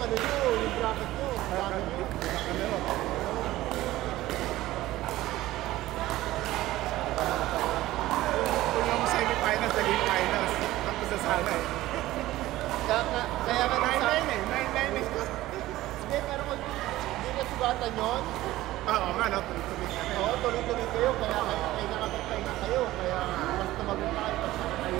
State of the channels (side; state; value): left; quieter; 16.3 dB